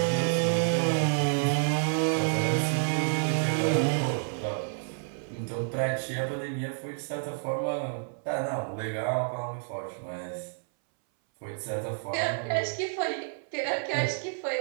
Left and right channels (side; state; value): left; silent; 58 dB below the other